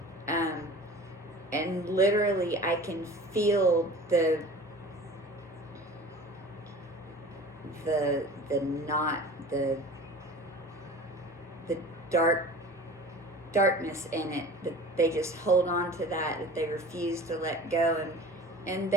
And literally I can feel the darkness in it, that they just hold on to that they refuse to let go. And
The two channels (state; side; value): normal; both; correlation 0.40